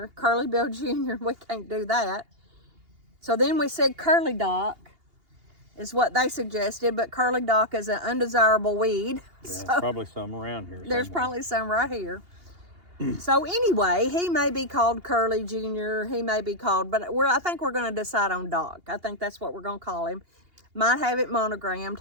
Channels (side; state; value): left; late; 2.8 ms